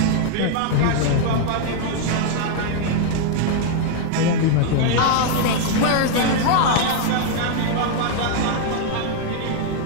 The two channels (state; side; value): different; both; correlation 0.00